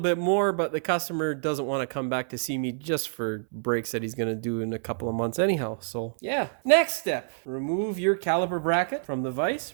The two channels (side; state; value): left; silent; 60 dB below the other